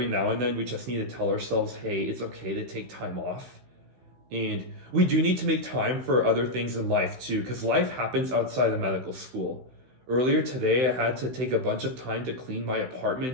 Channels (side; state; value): left; late; 16 ms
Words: now and then we just need to tell ourselves, hey, it's okay to take time off. And we do need to make time for other things in life too, because life happens outside of medical school. Earlier today, I had to take a bunch of time to clean my